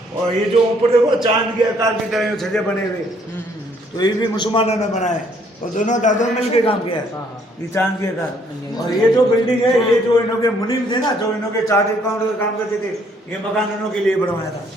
और ये जो ऊपर देखो चांद के आकार की तरह छजे बने हुए, तो ये भी मुसलमानों ने बनाए, और दोनों दादों ने मिलकर काम किया है ये चांद के आकार। और ये जो बिल्डिंग है, ये जो इन्हों के मुनीम थे ना, जो इन्हों के चार्ट अकाउंट का काम करते थे, ये मकान उन्हों के लिए बनवाया था।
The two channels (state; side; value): normal; both; correlation 0.65